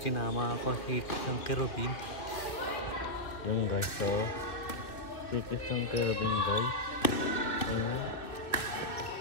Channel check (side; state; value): right; late; 2.5 ms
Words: sinama ako si Kisang Kerubin. Yung guys, so si Kisang Kerubin guys. Ayan.